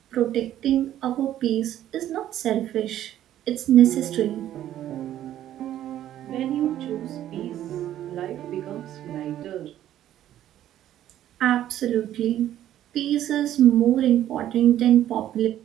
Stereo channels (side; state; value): left; quieter; 12.1 dB